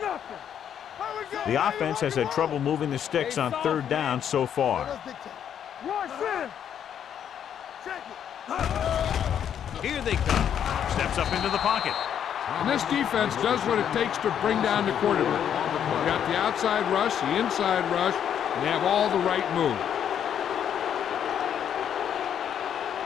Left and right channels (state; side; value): quieter; right; 9.1 dB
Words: nothing. How we go? The offense has had trouble moving the sticks on third down so far. Watch this. Check it. Here they come. Steps up into the pocket. And this defense does what it takes to bring down the quarterback. They've got the outside rush, the inside rush, and they have all the right moves.